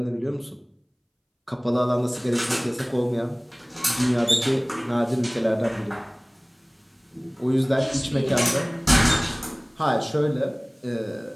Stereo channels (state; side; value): identical; both; correlation 1.00